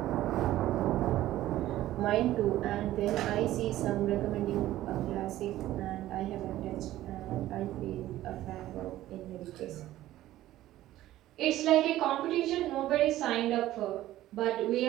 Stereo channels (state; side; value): quieter; left; 14.6 dB